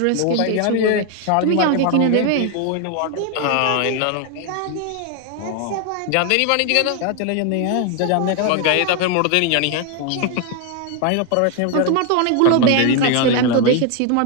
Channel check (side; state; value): both; different; correlation 0.01